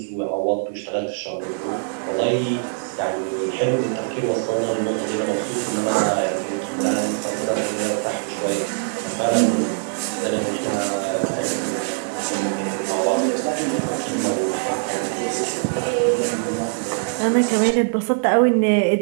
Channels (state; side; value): silent; left; 64 dB below the other